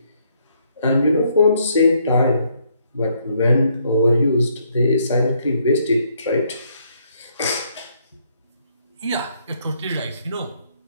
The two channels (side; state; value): both; inverted; correlation -0.70